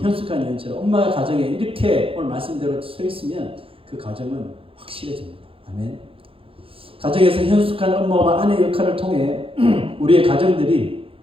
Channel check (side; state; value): left; late; 0.27 ms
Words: 여인처럼 엄마가 가정에 이렇게 오늘 말씀대로 서 있으면 그 가정은 확실해집니다. 아멘. 가정에서 현숙한 엄마와 아내 역할을 통해 우리의 가정들이